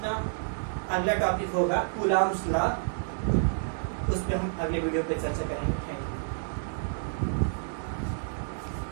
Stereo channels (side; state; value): left; silent; 58 dB below the other